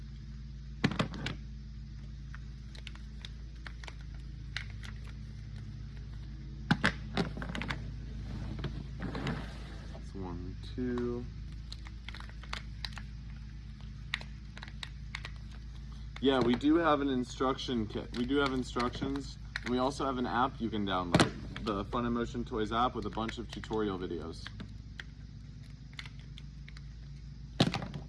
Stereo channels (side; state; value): both; identical; correlation 1.00